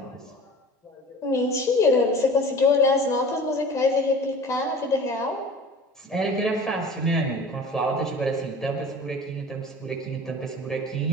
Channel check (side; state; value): both; normal; correlation 0.41